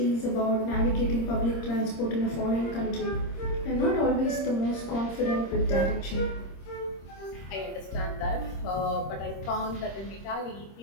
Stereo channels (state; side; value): late; right; 26 ms